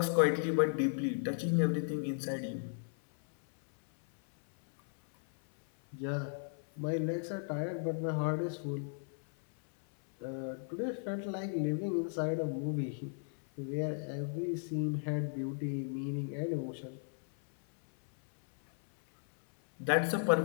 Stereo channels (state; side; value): silent; right; 54 dB below the other